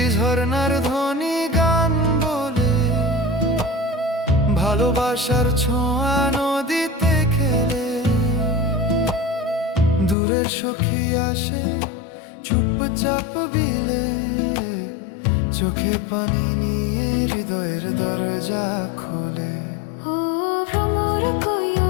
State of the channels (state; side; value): drops out; right; at 10.2 s